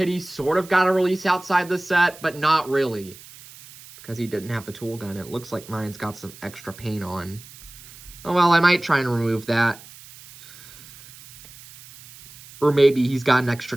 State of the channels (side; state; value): right; noise; hiss, 19 dB below the sound